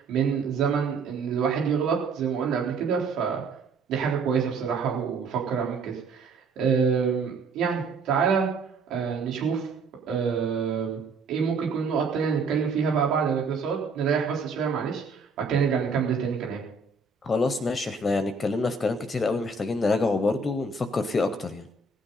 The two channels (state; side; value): quieter; left; 3.7 dB